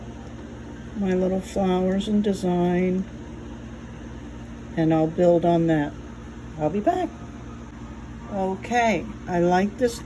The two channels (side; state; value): both; identical; correlation 1.00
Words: my little flowers and design, and I'll build on that. I'll be back. Okay, I like this